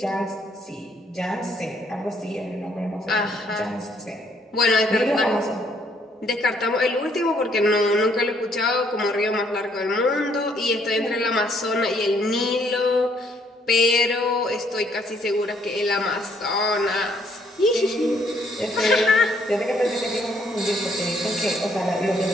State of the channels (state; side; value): normal; both; correlation 0.67